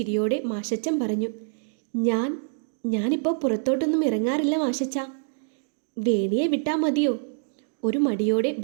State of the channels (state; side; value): silent; left; digital silence